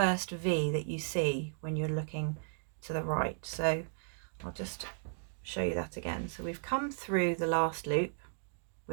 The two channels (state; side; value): silent; left; digital silence